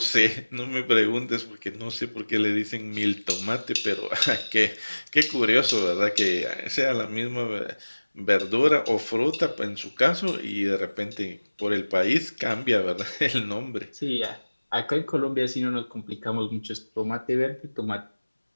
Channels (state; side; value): inverted; both; correlation -1.00